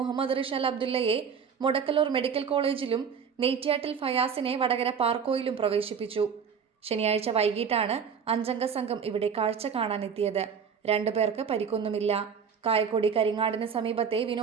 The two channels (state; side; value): quieter; left; 6.8 dB